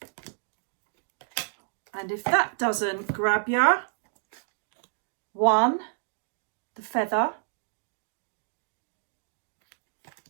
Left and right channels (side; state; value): left; silent; digital silence